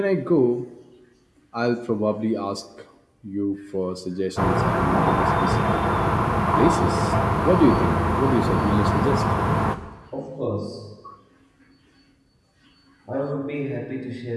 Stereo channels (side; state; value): both; identical; correlation 1.00